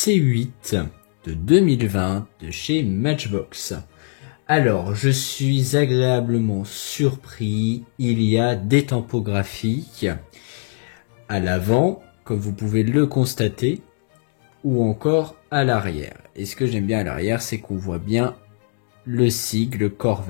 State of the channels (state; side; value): silent; right; digital silence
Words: de 2020 de chez Matchbox. Alors, je suis agréablement surpris. Il y a des tampons graphiques à l'avant, comme vous pouvez le constater, ou encore à l'arrière. Et ce que j'aime bien à l'arrière, c'est qu'on voit bien le sigle